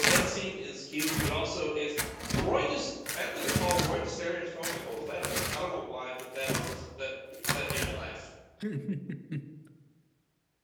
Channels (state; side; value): identical; both; correlation 1.00